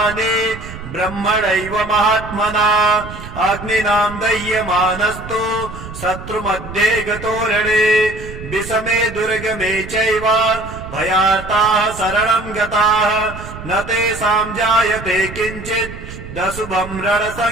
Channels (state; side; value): noise; right; rumble, 12 dB below the sound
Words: ब्रह्मणैव महात्मना अग्निनां दह्यमानस्तु शत्रुमध्ये गतोरणे विषमे दुर्गमे चैव भयार्ताः शरणं गताः न तेषां जायते किञ्चित् दशुभं